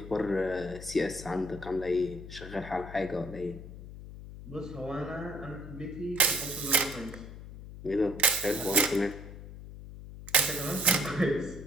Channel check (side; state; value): left; noise; hum, 13 dB below the sound